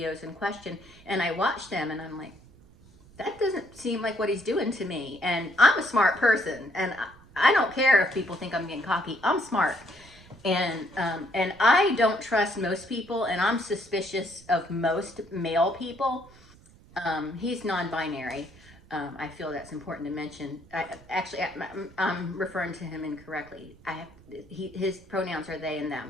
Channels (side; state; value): right; noise; rumble, 25 dB below the sound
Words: in question and I watched them, and I'm like, that doesn't seem like what he's doing to me. And I'm a smart person, and I don't care if people think I'm getting cocky. I'm smart. And I don't trust most people, and I'm suspicious of most male people. He's non-binary. I feel that's important to mention. I'm referring to him incorrectly. His pronouns are they and